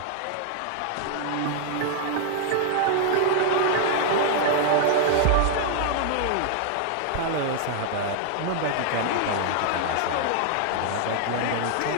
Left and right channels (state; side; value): different; both; correlation 0.00